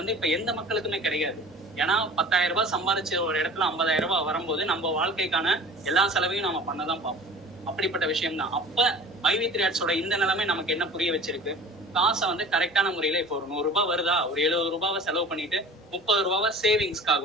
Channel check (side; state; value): both; normal; correlation 0.42